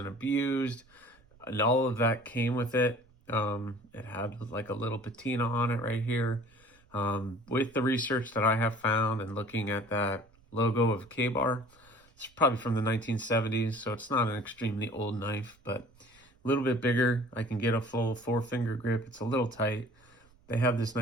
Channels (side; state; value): right; noise; rumble, 30 dB below the sound